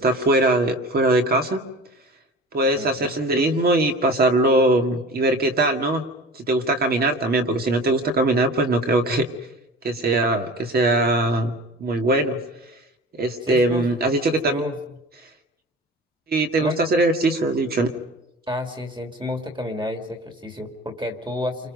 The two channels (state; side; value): normal; both; correlation 0.38